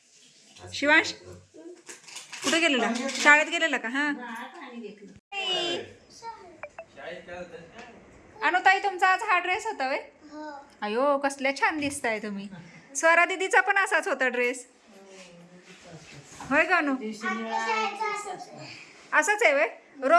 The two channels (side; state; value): both; identical; correlation 1.00